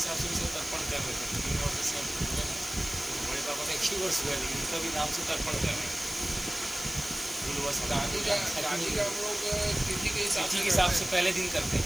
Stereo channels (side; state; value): left; noise; hiss, 11 dB below the sound